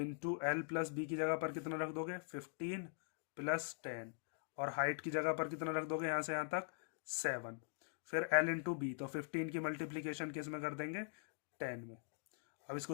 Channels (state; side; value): silent; right; digital silence